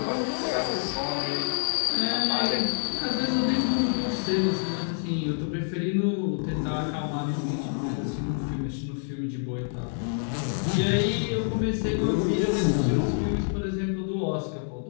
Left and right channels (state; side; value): silent; right; 60 dB below the other